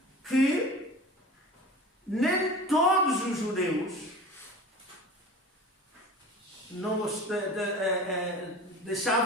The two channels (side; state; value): both; normal; correlation 0.37